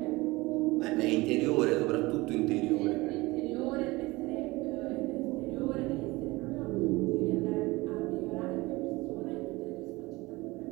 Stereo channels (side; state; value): left; quieter; 21.7 dB